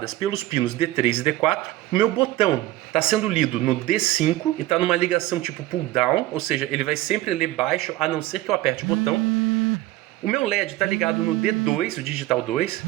pelos pinos D3 e D4. O meu botão está sendo lido no D5 e está numa ligação tipo pull down, ou seja, ele vai sempre ler baixo, a não ser que eu aperte o botão. O meu LED está ligado no D2, o digital 2,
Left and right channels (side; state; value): left; quieter; 16.4 dB